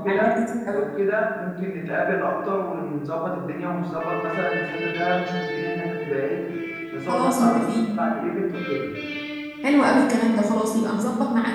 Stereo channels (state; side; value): identical; both; correlation 1.00